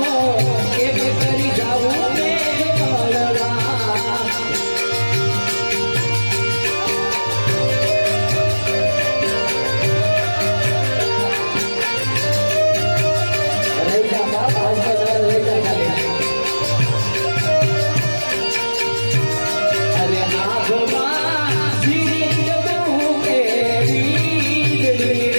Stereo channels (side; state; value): both; inverted; correlation -1.00